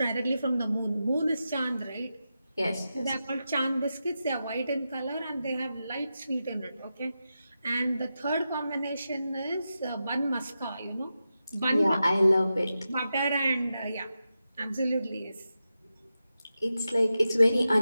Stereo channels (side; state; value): both; inverted; correlation -0.90